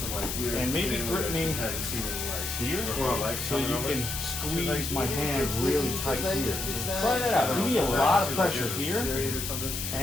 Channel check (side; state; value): left; noise; hiss, 4 dB below the sound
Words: like weird and maybe family grip that me just hadn't seen any, like, here, or like so you coming can over. squeeze my hand really tight here. Try that out. You need a lot of pressure here,